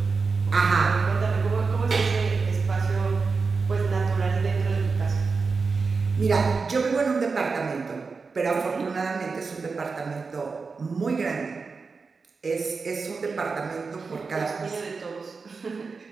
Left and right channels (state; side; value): quieter; left; 4.6 dB